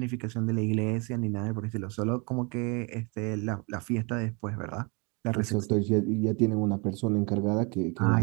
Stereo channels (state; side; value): quieter; left; 31.3 dB